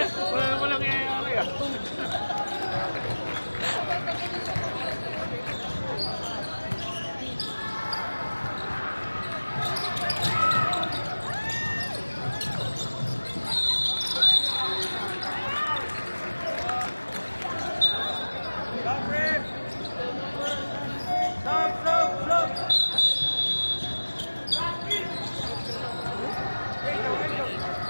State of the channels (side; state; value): both; inverted; correlation -1.00